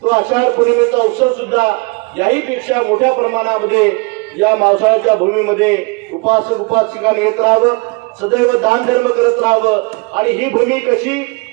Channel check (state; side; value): quieter; left; 28.2 dB